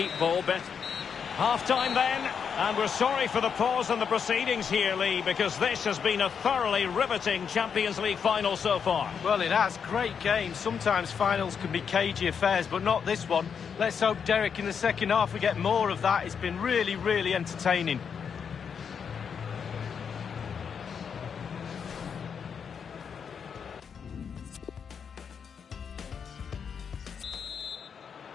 ball bet. Half-time then, and we're sorry for the pause in the proceedings here, Lee, because this has been a thoroughly riveting Champions League final so far. Well, it has. Great game. Sometimes finals can be cagey affairs, but not this one. Let's hope, Derek, in the second half we get more of that. It's been really, really entertaining.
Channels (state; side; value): quieter; right; 6.8 dB